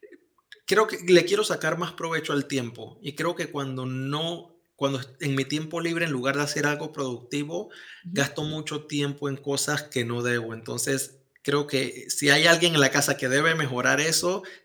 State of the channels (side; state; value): both; identical; correlation 1.00